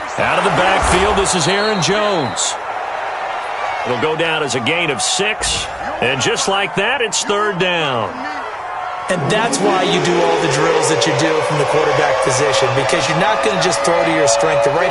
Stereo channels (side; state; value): both; identical; correlation 1.00